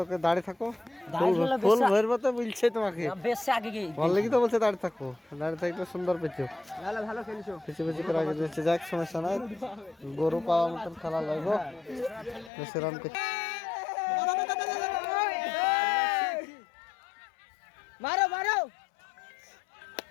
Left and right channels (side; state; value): right; drops out; at 12.5 s